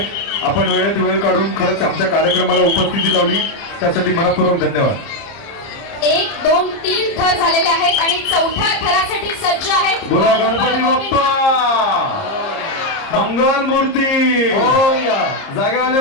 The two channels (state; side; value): late; right; 30 ms